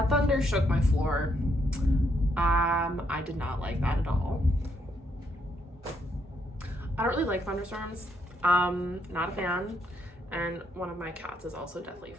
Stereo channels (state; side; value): normal; both; correlation 0.75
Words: thunder shook my floor. I did not like that at all. I don't really like thunderstorms. Not a fan. And one of my cats is also deathly